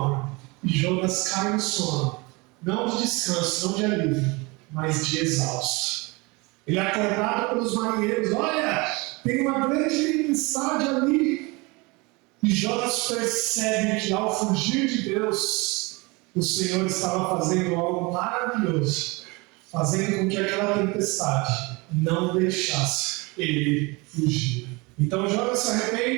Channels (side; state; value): left; quieter; 26.1 dB